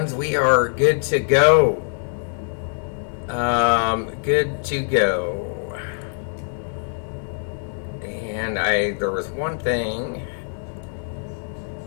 We are good to go. Good to go. And there was one thing.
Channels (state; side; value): silent; right; digital silence